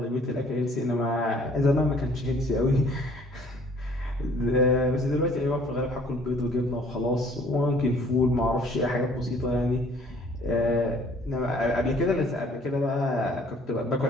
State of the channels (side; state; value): both; normal; correlation 0.57